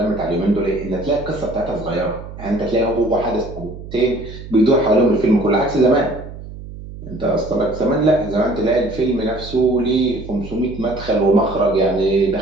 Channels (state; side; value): noise; right; hum, 13 dB below the sound